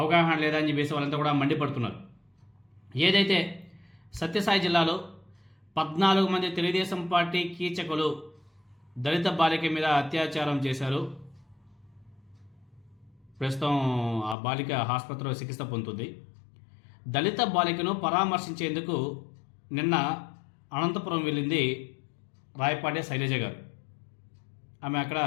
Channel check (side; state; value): right; drops out; at 14.4 s